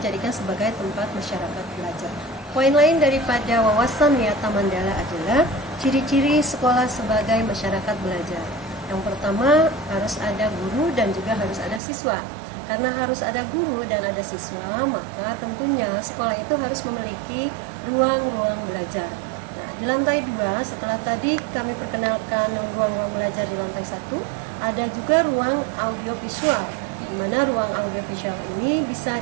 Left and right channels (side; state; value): left; drops out; at 11.8 s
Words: sebagai tempat masyarakat belajar. Poin lain daripada wawasan Wiyata Mandala adalah ciri-ciri sekolah sebagai masyarakat belajar. Yang pertama, harus ada guru dan juga harus ada siswa. Karena harus ada guru dan ada siswa, maka tentunya sekolah itu harus memiliki ruang-ruang belajar. Nah, di lantai 2, setelah tadi kami perkenalkan ruang-ruang belajar di lantai 1, ada juga ruang audiovisual, di mana ruang audiovisual ini bisa